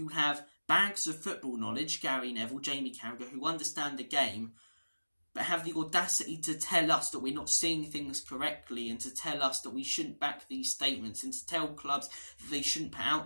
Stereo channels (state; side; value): inverted; both; correlation -1.00